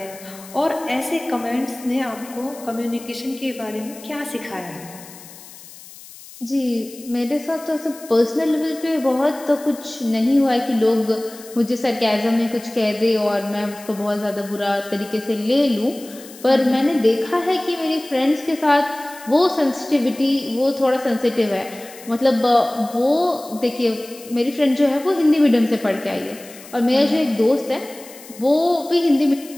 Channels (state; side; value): noise; left; hiss, 18 dB below the sound